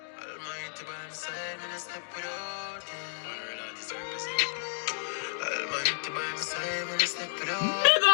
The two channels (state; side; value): silent; right; digital silence